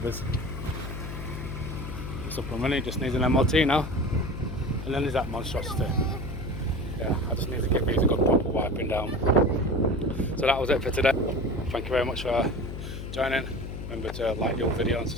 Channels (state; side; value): noise; left; hum, 8 dB below the sound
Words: It's up and running, just needs an MOT now. And then there's that monstrosity. Yeah, I just need to give these a good proper wiping down. So that was it for today. Thank you very much for joining. Remember to like your video and